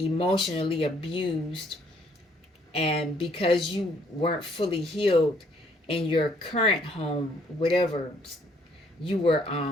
abused, and because you weren't fully healed in your current home, whatever, you were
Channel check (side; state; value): both; normal; correlation 0.65